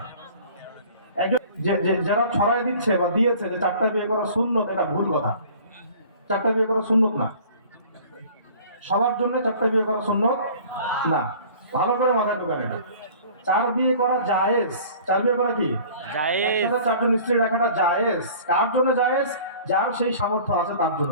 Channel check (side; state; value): both; inverted; correlation -0.47